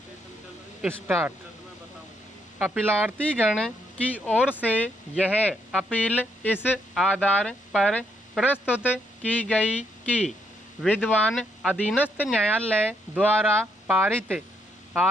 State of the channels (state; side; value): normal; both; correlation 0.75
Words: Start. अपीलार्थी गण की ओर से यह अपील इस आधार पर प्रस्तुत की गई कि विद्वान अधीनस्थ न्यायालय द्वारा पारित